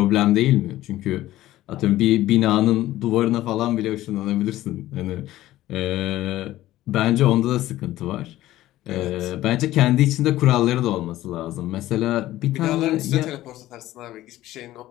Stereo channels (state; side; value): quieter; right; 15.3 dB